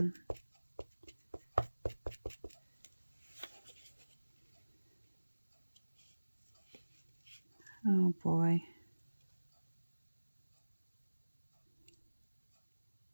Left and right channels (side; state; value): both; inverted; correlation -1.00